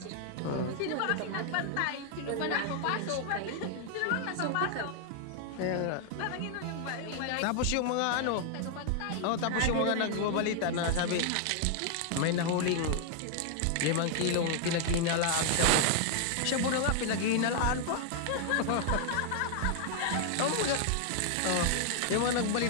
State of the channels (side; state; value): both; different; correlation 0.00